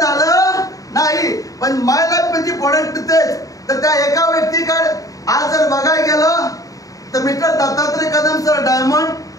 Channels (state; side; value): late; right; 0.17 ms